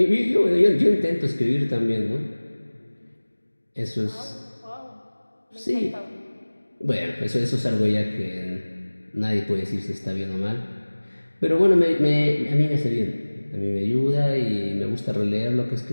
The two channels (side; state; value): both; inverted; correlation -1.00